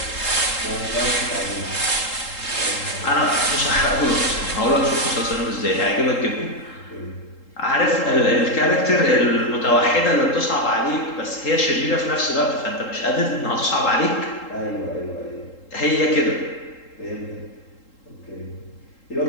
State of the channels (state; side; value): late; right; 3.8 ms